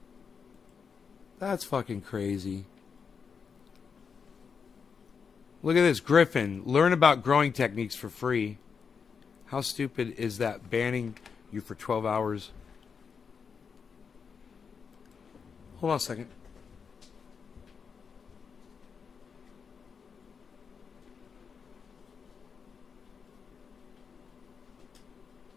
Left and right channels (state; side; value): quieter; right; 6.0 dB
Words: That's fucking crazy. Look at this, Griffin. Learn about growing techniques for free. How stupid is that? Banning you for 12 hours. Hold on a second.